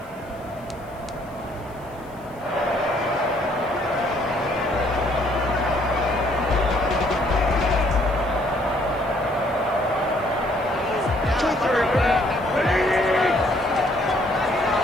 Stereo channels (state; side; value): noise; left; hiss, 28 dB below the sound